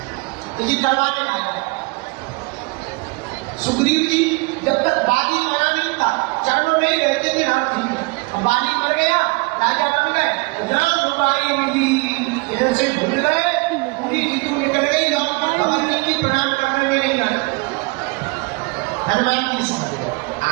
तो ये करवाने आया। सुग्रीव जी जब तक बाली मरा नहीं था, चरणों में ही रहते थे राम जी। अब बाली मर गया, राजा बन गए, राम रुबाई मिली, इधर से भूल गए, पूरी ऋतु निकल गई, लौट कर खबर नहीं की, प्रणाम करने में नहीं आया। हनुमान जी समझ गए,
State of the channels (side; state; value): left; quieter; 28.1 dB